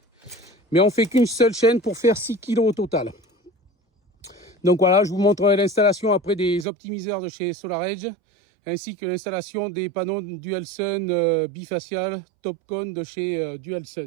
mais on fait qu'une seule chaîne pour faire 6 kg au total. Donc voilà, je vous montrerai l'installation après des optimiseurs de chez SolarEdge, ainsi que l'installation des panneaux Dualsun bifacial Topcon de chez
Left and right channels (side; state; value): left; drops out; at 6.7 s